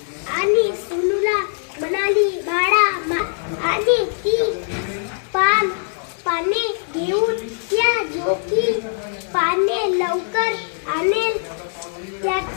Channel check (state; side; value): silent; right; digital silence